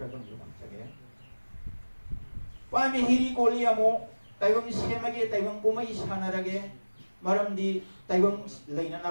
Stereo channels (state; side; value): inverted; both; correlation -1.00